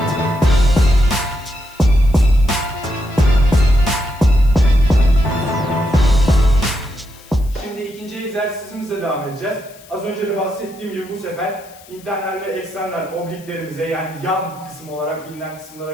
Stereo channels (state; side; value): noise; left; hiss, 24 dB below the sound